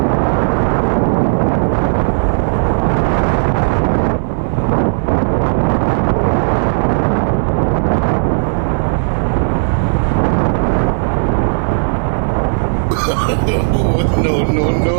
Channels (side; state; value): left; silent; digital silence